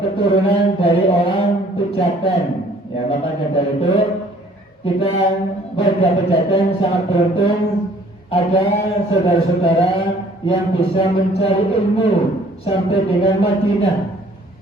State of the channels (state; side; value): normal; both; correlation 0.57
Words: keturunan dari orang Pejaten, ya, makanya dari itu kita warga Pejaten sangat beruntung ada saudara-saudara yang bisa mencari ilmu sampai dengan Madinah.